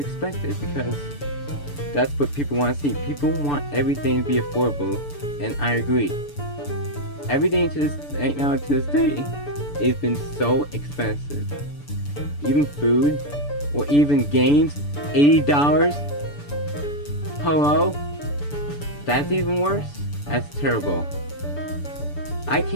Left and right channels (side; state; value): right; late; 6.9 ms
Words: because that's what people want to see. People want everything to be affordable, and I agree. Everything right now to this day has been so expensive. Even food, or even games, $80. Hello? That's even worse? That's terrible. I